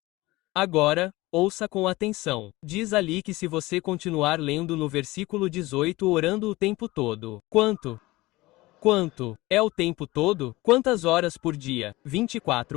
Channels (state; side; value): quieter; right; 20.1 dB